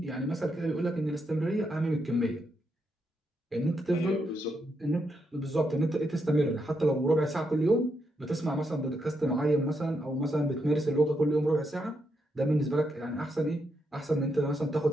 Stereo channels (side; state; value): both; normal; correlation 0.81